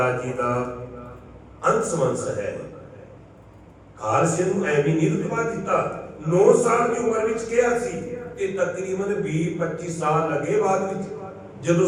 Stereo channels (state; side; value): identical; both; correlation 1.00